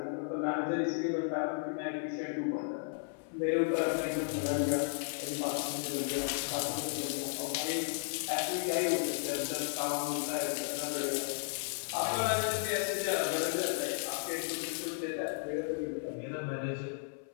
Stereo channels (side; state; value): right; silent; 55 dB below the other